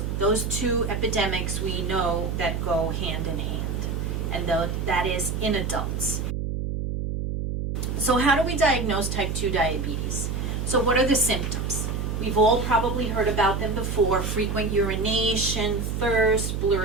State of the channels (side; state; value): right; noise; hum, 2 dB below the sound